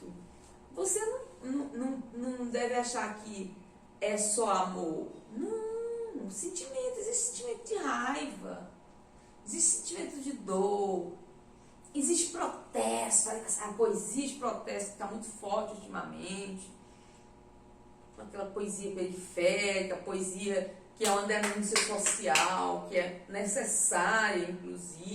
você não deve achar que é só amor. Não, sentimento, existe sentimento de raiva, existe sentimento de dor, existe protesto, a poesia de protesto está muito forte ultimamente, aquela poesia periférica, poesia que é uma denúncia social, que é necessária,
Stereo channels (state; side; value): identical; both; correlation 1.00